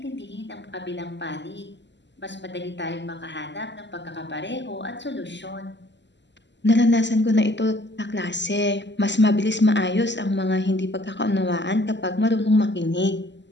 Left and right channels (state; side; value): late; right; 0.52 ms